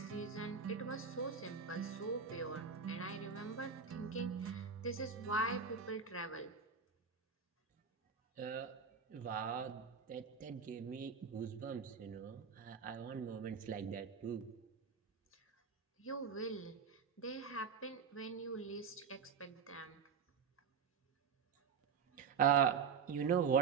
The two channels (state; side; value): quieter; left; 6.2 dB